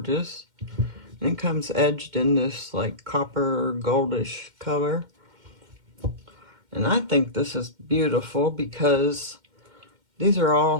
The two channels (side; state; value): left; late; 2.1 ms